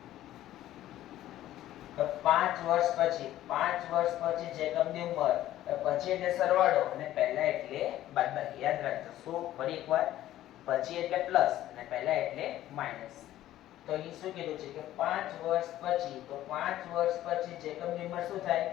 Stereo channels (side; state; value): right; quieter; 13.7 dB